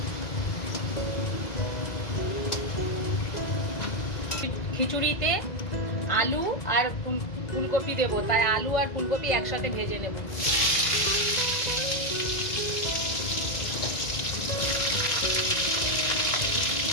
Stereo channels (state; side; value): late; right; 2.0 ms